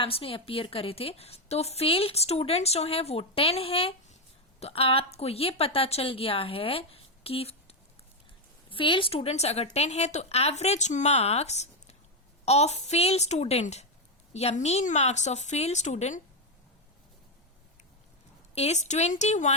में अपीयर करे थे, तो फेल्ड स्टूडेंट्स जो हैं वो 10 हैं. तो आपको ये पता चल गया है कि फेल्ड स्टूडेंट्स अगर 10 है तो average marks of fail student या mean marks of fail student is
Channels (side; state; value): both; normal; correlation 0.04